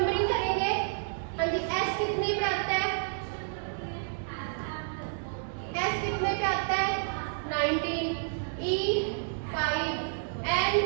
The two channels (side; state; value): left; silent; digital silence